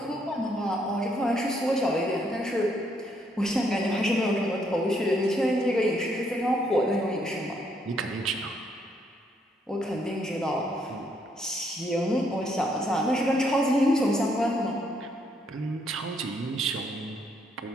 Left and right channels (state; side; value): normal; both; correlation 0.72